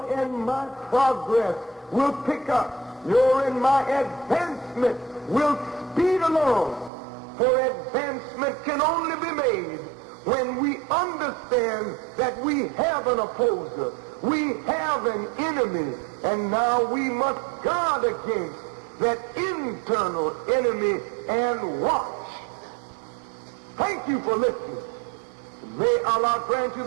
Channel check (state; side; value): drops out; left; at 6.9 s